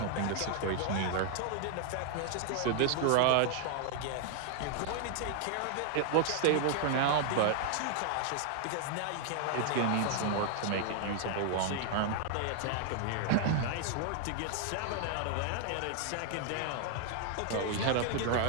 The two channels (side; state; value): both; different; correlation 0.00